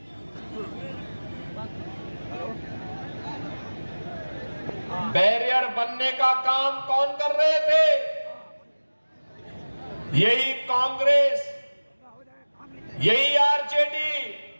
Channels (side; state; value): both; inverted; correlation -1.00